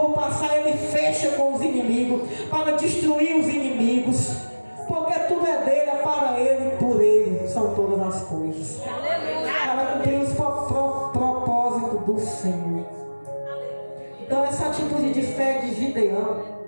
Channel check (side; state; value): both; inverted; correlation -1.00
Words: passar, ele fecha com os inimigos, para destruir os inimigos. Porque tudo é dele, é para ele e por ele são todas as coisas. Para cumprir os propósitos do Senhor. Então essa atitude de fé de Gideão